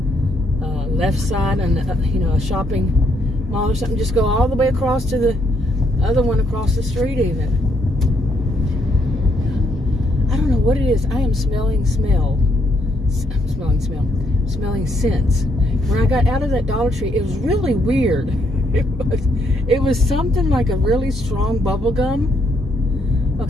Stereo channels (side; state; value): both; normal; correlation 0.73